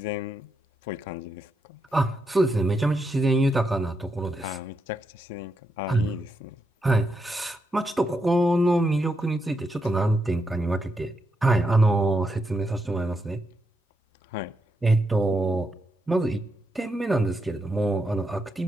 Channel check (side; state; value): both; normal; correlation 0.82